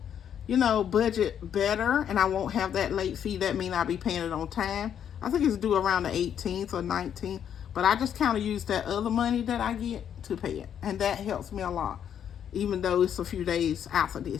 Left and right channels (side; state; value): right; quieter; 9.0 dB